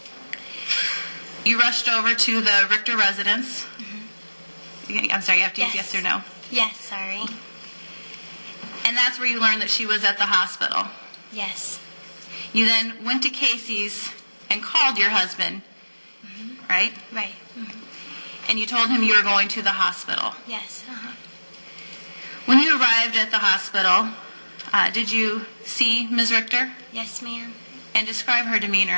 You rushed over to the Richter residence. I'm sorry, you have to use yes or no? Yes, sorry. And that's where you learned that she was at the hospital. Yes. You then went to Casey's and called your husband, right? Right. And you told him you were going to the hospital. Yes. When you arrived at the hospital, did you see Ms. Richter? Yes, ma'am. And describe her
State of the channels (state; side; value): inverted; both; correlation -1.00